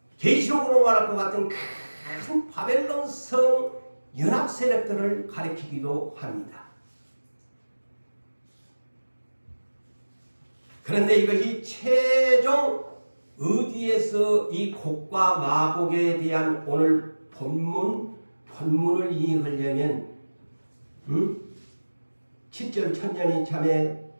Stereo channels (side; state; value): both; inverted; correlation -1.00